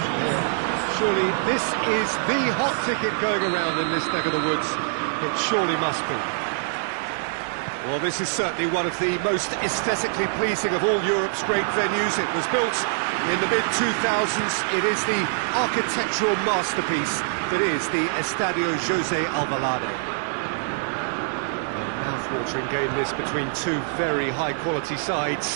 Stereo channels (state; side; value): silent; left; 62 dB below the other